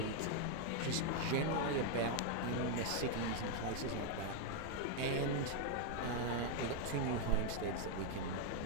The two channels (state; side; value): different; both; correlation 0.00